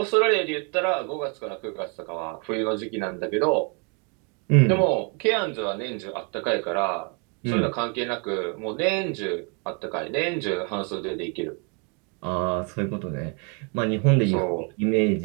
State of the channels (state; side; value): quieter; left; 34.3 dB